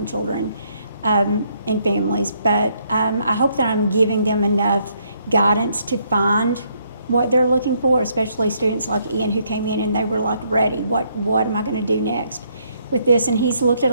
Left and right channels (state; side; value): inverted; both; correlation -0.72